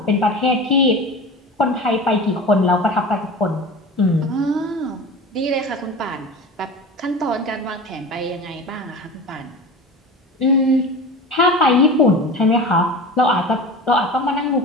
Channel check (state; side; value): normal; both; correlation 0.32